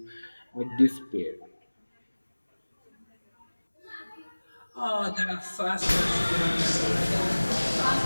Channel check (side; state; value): both; inverted; correlation -1.00